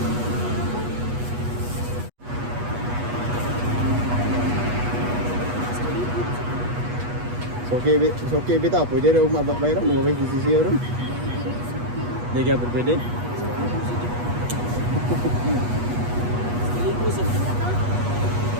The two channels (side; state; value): left; late; 8.3 ms